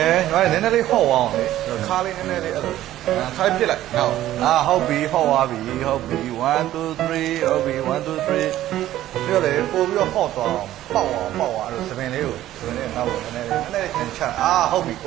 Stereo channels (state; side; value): quieter; left; 13.7 dB